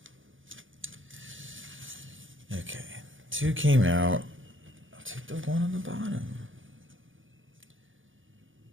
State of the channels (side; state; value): left; late; 0.57 ms